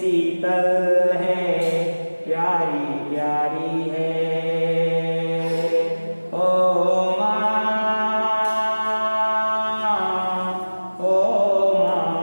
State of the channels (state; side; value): inverted; both; correlation -1.00